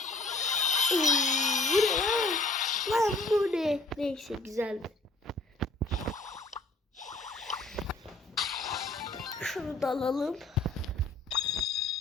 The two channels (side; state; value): right; quieter; 3.1 dB